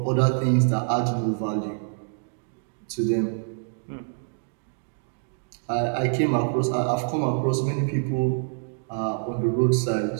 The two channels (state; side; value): silent; left; digital silence